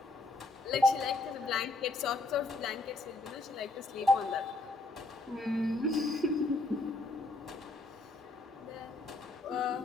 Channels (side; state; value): right; quieter; 3.1 dB